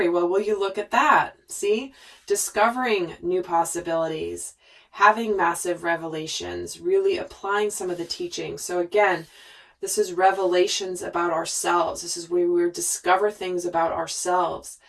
Well, will you look at that? See? Discovering new possibilities, having massive revelations, really applying some of the teaching. So again, this is revelations about ourselves. This is where we discover things about ourselves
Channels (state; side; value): identical; both; correlation 1.00